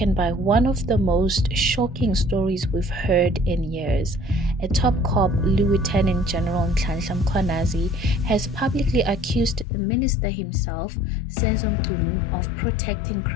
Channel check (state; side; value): drops out; right; at 9.7 s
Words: by one of the most shocking stories we've heard in years. A top cop, Lieutenant-General Nhlanhla Mkhwanazi, has publicly accused the minister himself, Senzo Mchunu, of protecting